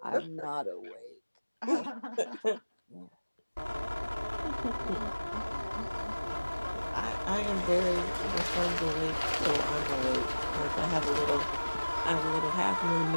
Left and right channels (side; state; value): both; inverted; correlation -1.00